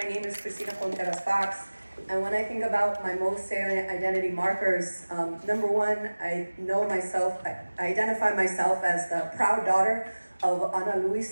name is Cristina Contreras Fox. And when I think about my most salient identity markers, number one, I identify myself as the proud daughter of Ana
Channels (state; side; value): inverted; both; correlation -1.00